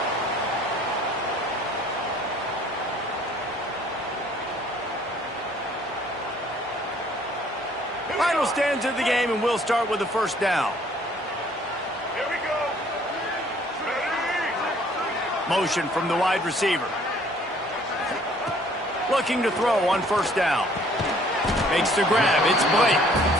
Final stands of the game, and we'll start with the first down. Here we go. Ready? Motion from the wide receiver. Looking to throw on first down. Makes the grab. It's Blake.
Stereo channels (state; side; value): normal; both; correlation 0.58